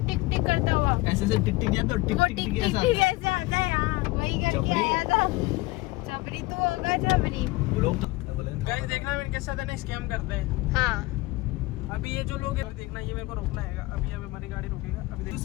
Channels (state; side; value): quieter; right; 21.0 dB